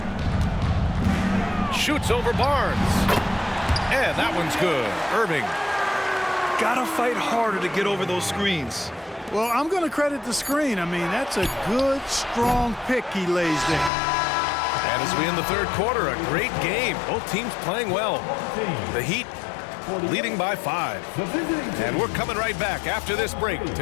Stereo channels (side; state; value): right; drops out; at 13.9 s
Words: Shoots over Barnes. And that one's good. Irving. Gotta fight harder to get over those screens. Well, I'm going to credit the screen. I mean, that's a good, strong pick he lays there. And as we end the third quarter, a great game. Both teams playing well. The Heat leading by 5. And we're coming right back after this break